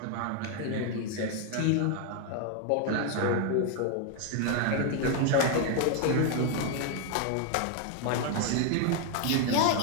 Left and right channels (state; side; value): different; both; correlation 0.01